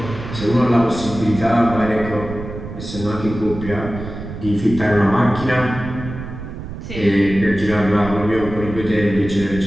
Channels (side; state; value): right; noise; rumble, 10 dB below the sound